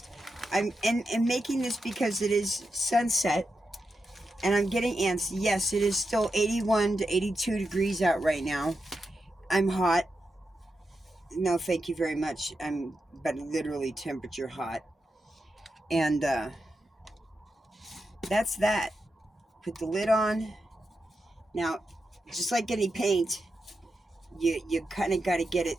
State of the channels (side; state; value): both; normal; correlation 0.88